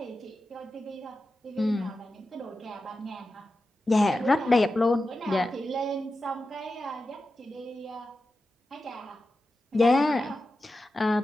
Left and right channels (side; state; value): both; normal; correlation 0.92